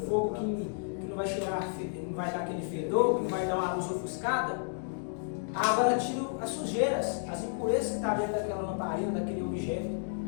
fogo que não vai cheirar, não vai dar aquele fedor, que não vai dar uma luz ofuscada, a água ela tira as sujeiras, as impurezas que estão dentro daquela lamparina, daquele objeto.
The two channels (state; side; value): silent; right; digital silence